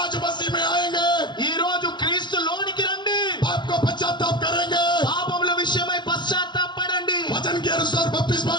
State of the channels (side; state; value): right; late; 0.22 ms